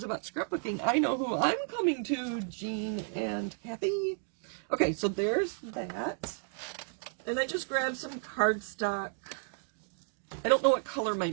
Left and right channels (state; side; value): silent; left; 56 dB below the other